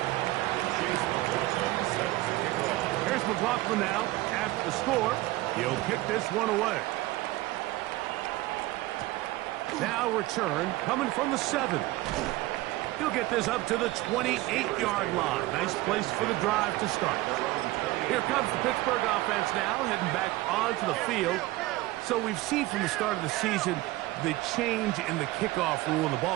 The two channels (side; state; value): left; quieter; 18.5 dB